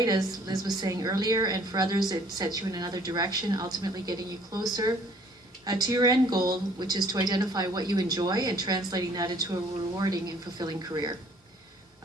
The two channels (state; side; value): normal; both; correlation 0.58